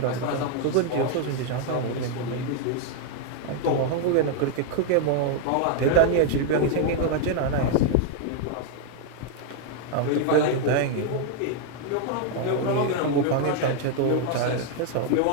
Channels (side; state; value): both; different; correlation 0.00